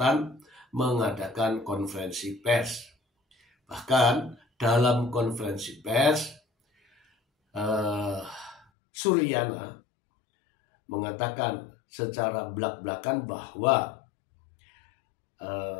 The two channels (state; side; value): drops out; right; at 8.7 s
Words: mengadakan konferensi pers. Bahkan dalam konferensi pers, Suryana mengatakan secara belak-belakan bahwa